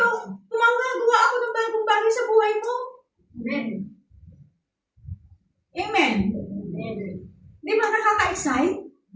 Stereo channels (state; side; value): identical; both; correlation 1.00